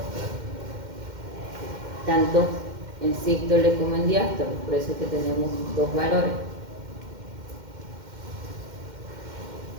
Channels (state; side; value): late; left; 2.1 ms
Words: tanto en sístole como en diástole, por eso es que tenemos dos valores.